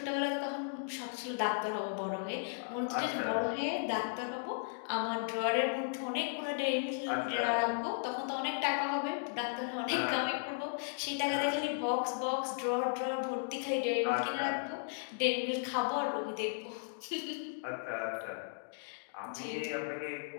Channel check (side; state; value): right; silent; digital silence